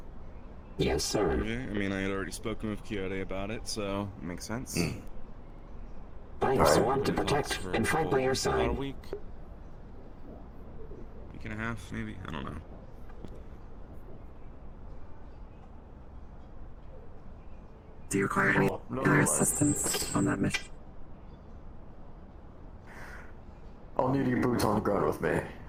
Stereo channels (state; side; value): identical; both; correlation 1.00